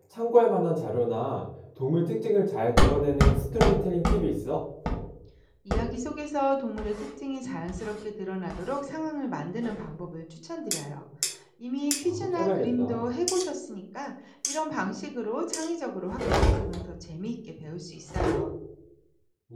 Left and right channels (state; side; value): identical; both; correlation 1.00